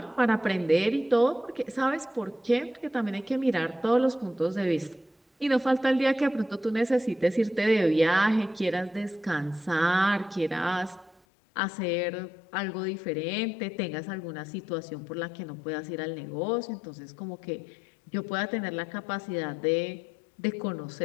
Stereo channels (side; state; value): right; drops out; at 11.2 s